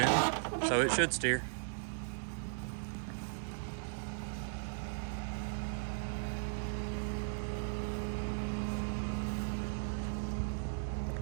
so it should steer.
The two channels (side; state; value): left; silent; digital silence